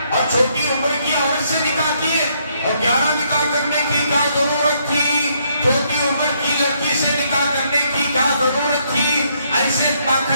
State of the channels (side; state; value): both; inverted; correlation -0.72